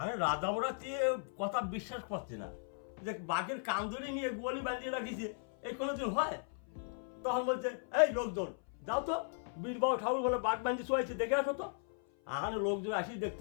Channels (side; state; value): right; silent; 53 dB below the other